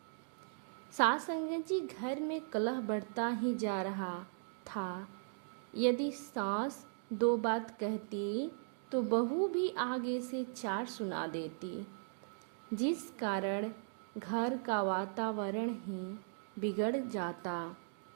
सास संगत जी, घर में कलह बढ़ता ही जा रहा था। यदि सास दो बात कहती तो बहू भी आगे से चार सुना देती, जिस कारण घर का वातावरण ही बिगड़ जाता।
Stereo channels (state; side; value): silent; left; digital silence